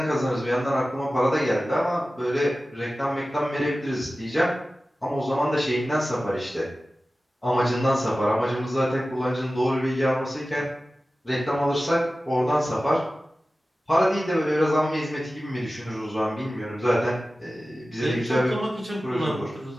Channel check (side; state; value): both; normal; correlation 0.95